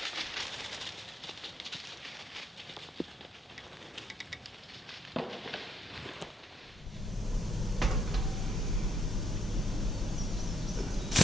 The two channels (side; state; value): both; normal; correlation 0.73